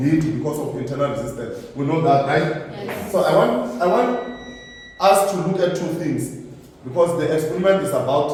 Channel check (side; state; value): both; identical; correlation 1.00